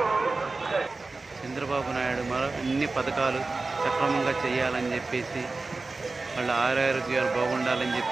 చంద్రబాబు నాయుడు అన్ని పథకాలు సక్రమంగా చేయాలని చెప్పేసి, వాళ్ళ ఆరోగ్యాలు బాగుండాలని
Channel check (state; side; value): quieter; left; 3.6 dB